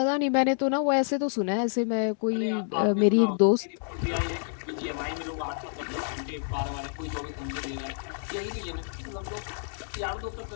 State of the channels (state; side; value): silent; right; digital silence